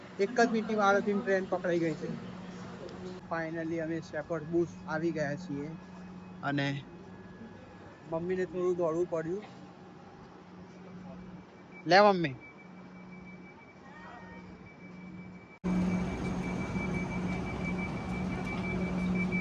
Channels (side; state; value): both; identical; correlation 1.00